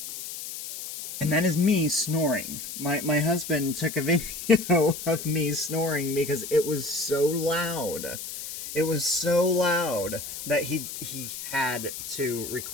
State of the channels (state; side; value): noise; left; hiss, 9 dB below the sound